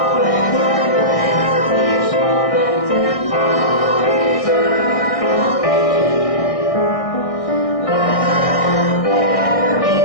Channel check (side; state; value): right; late; 1.6 ms